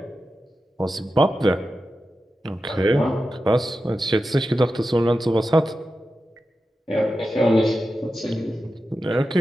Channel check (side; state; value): both; normal; correlation 0.91